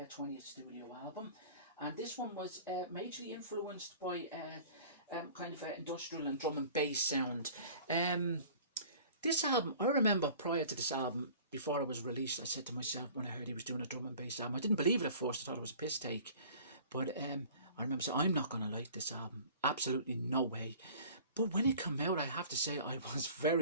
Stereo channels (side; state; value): both; inverted; correlation -0.46